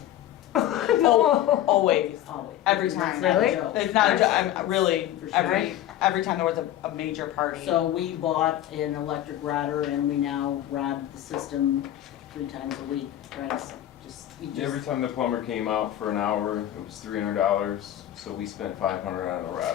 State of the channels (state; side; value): quieter; right; 12.6 dB